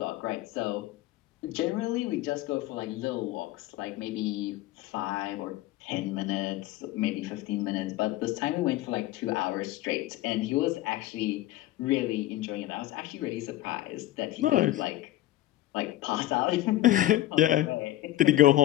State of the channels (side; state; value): right; quieter; 15.4 dB